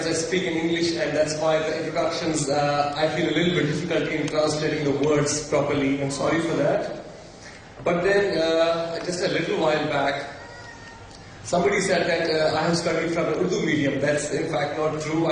I speak in English, and that's why the introductions I feel a little bit difficult in translating the words properly. I'm sorry for that. But then, just a little while back, somebody said that I have studied from an Urdu medium. That's in fact not true.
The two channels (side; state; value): both; identical; correlation 1.00